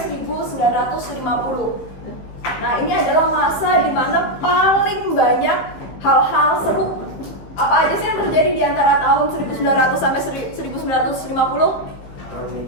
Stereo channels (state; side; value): late; right; 16 ms